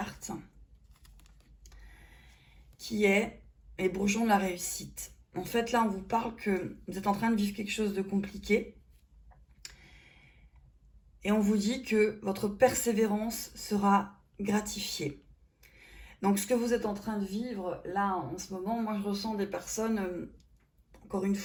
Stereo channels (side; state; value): both; identical; correlation 1.00